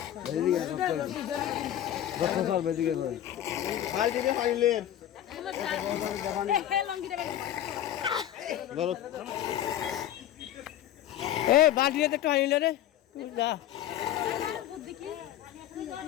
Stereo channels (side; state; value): right; quieter; 11.7 dB